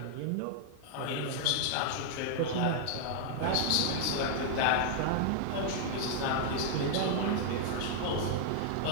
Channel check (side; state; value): both; different; correlation -0.01